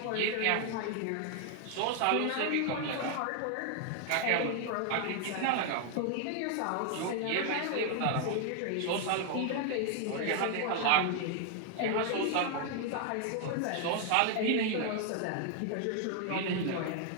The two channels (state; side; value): different; both; correlation 0.00